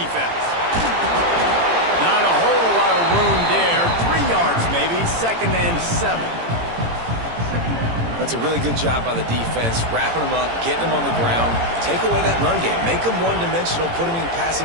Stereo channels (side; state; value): left; late; 18 ms